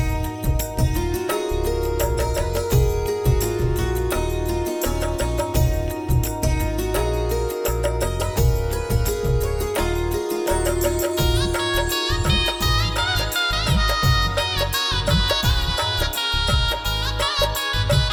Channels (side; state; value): both; identical; correlation 1.00